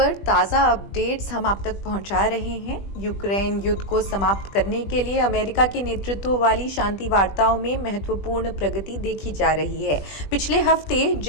ताज़ा अपडेट्स हम आप तक पहुंचा रहे हैं। यूक्रेन युद्ध को समाप्त करने के लिए अमेरिका के नेतृत्व वाली शांति वार्ताओं में महत्वपूर्ण प्रगति देखी जा रही है। पिछले हफ्ते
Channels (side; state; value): right; late; 20 ms